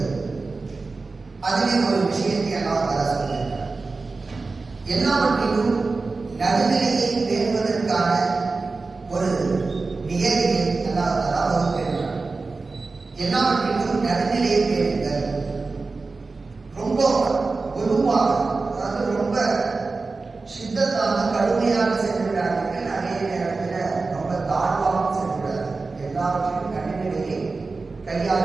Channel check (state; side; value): quieter; left; 3.9 dB